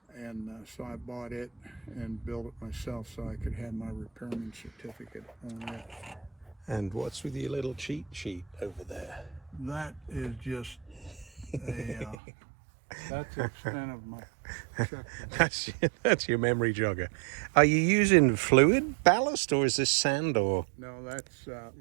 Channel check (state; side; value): drops out; left; at 12.2 s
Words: And so I bought it and built it myself so I could have my repairman certificate on it. And what's with your little cheat sheet over there? That is just that's the extent of my checkbook. That's your memory jogger. Are you using fluid ballast, or is this sand or No, that's